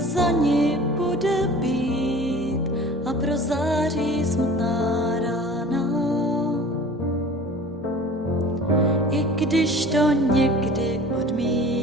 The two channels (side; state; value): both; normal; correlation 0.43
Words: ní bude bít a prozáří smutná rána. I když to někdy